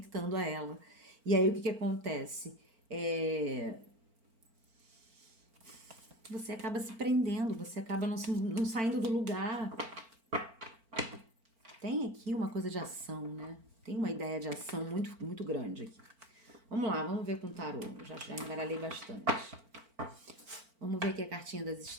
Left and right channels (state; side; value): late; left; 4.4 ms